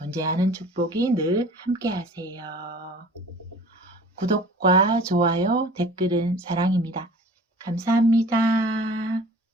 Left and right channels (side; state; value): both; normal; correlation 0.45